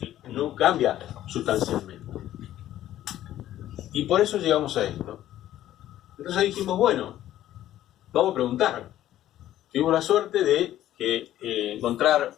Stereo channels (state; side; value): quieter; right; 13.0 dB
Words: no cambia sustancialmente. Y por eso llegamos a esto. Entonces dijimos, bueno, vamos a preguntar. Tuvimos la suerte de encontrar